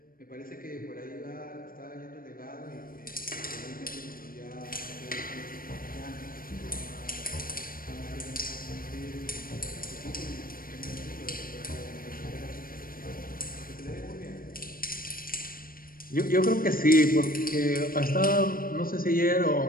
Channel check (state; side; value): late; right; 0.41 ms